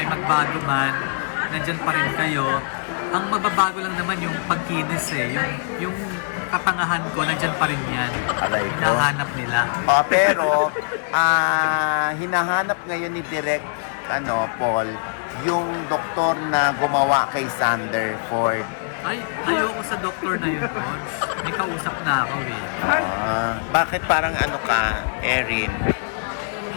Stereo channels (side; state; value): right; silent; digital silence